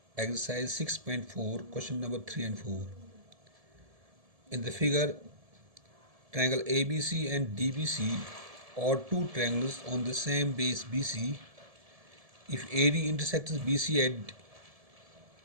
Exercise 6.4, question number 3 and 4. In the figure, triangle ABC and DBC are two triangles on the same base BC. If AD intersects BC at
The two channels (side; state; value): left; late; 1.7 ms